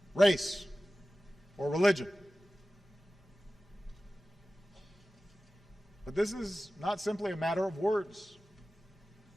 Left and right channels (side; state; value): both; normal; correlation 0.96